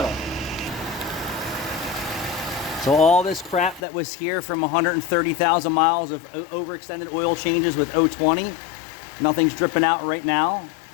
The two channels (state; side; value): drops out; right; at 3.8 s